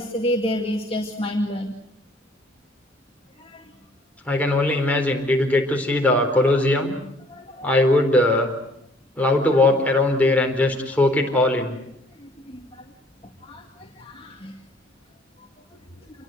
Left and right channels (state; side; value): normal; both; correlation 0.58